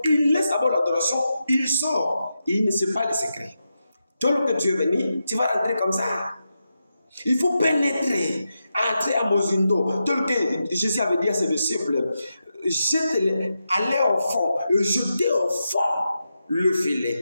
il laisse d'abord l'adoration, il sort. Et il ne sait pas les secrets. Toi, que tu es venu, tu vas rentrer comme ça. Il faut pénétrer, entrer à Mosindo. Tel que Jésus avait dit à ses disciples, jetez-les, allez au fond, jetez au fond le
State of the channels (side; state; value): both; inverted; correlation -0.87